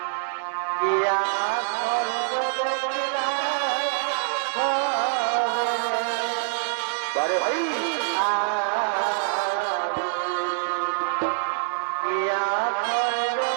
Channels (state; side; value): silent; left; digital silence